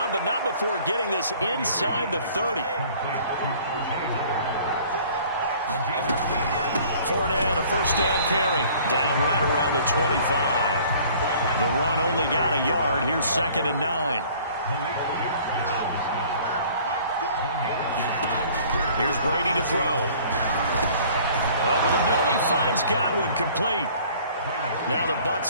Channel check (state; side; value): inverted; both; correlation -0.52